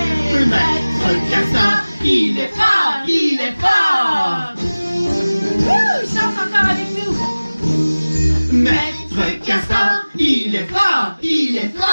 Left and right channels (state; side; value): inverted; both; correlation -1.00